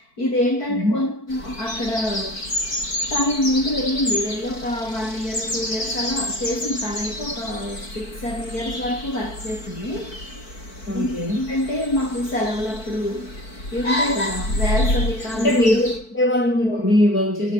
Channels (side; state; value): right; late; 4.5 ms